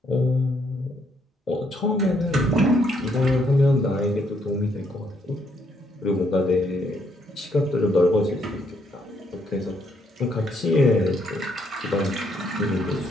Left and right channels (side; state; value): both; normal; correlation 0.72